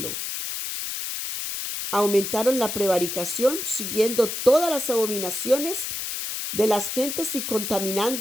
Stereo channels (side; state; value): left; noise; hiss, 4 dB below the sound